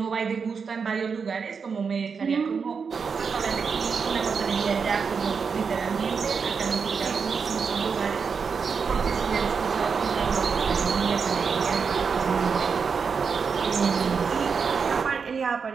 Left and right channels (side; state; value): left; quieter; 5.7 dB